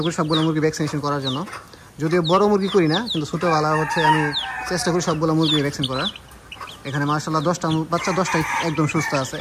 করি সবগুলো মুরগি ভ্যাকসিনেশন করার জন্য। যদিও বড় মুরগি করি না, কিন্তু ছোটোবেলা হচ্ছে আমি চেষ্টা করি সবগুলো মুরগি ভ্যাকসিন করার। এখানে মার্শাল্লাহ 10টা বাচ্চা, 10টাই একদম সুস্থ আছে।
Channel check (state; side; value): identical; both; correlation 1.00